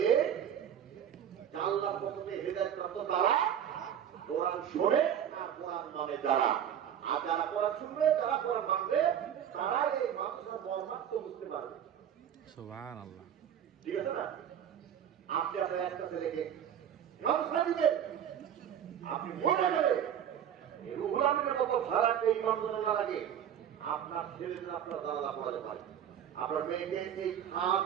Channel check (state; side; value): quieter; left; 9.4 dB